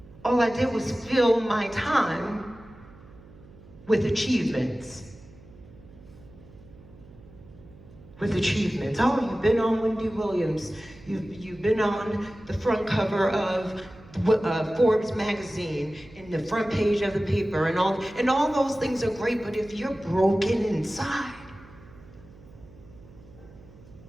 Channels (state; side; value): noise; right; hum, 21 dB below the sound